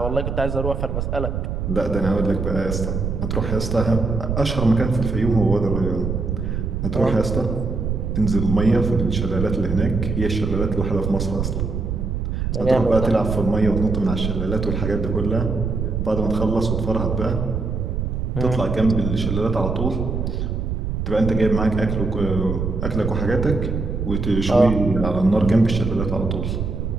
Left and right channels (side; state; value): right; noise; rumble, 2 dB below the sound